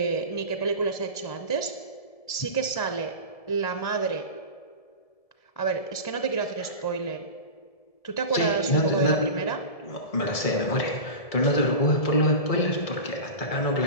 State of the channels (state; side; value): late; right; 1.7 ms